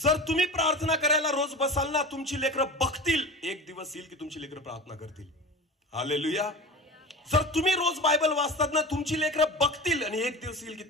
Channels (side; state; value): both; normal; correlation 0.33